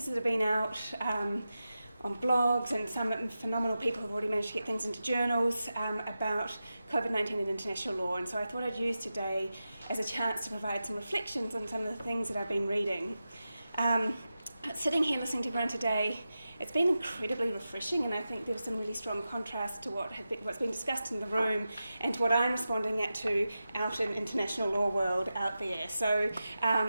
that have been out on blogs, and some phenomenal people have already managed to get things into journals about COVID-19 and international law, and so I thought I'd use today as a chance to provide some reflections on some of the things that I've been reading. Sitting here listening to everyone today, it's been incredibly refreshing, and I think there was some really strong contrast to what's been discussed in the room and to what I'm responding to out in international law world out there. So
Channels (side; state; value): both; inverted; correlation -0.92